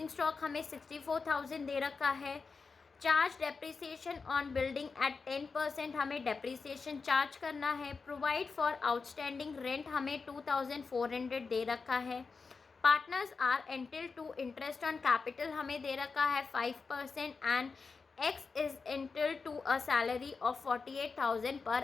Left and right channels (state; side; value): quieter; right; 4.7 dB